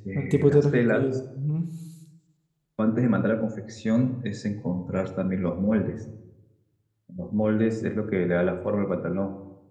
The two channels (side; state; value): both; identical; correlation 1.00